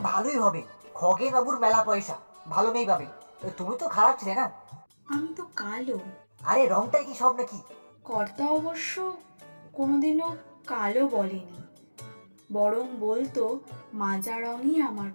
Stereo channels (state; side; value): inverted; both; correlation -1.00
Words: ভালোই হবে, খগেন বাবুর মেলা পয়সা, ভালো মেয়ে পাবে। তুমি তো খারাপ ছিলে না। আমি তো কালো। আরে রংটাই কি সব নাকি? কর্তা অবশ্য কোনোদিনও কালো বলেনি, বরং বলতো মাজা রঙই আমার